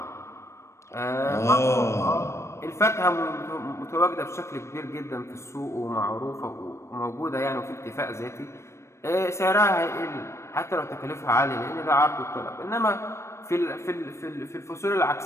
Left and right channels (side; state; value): right; late; 0.13 ms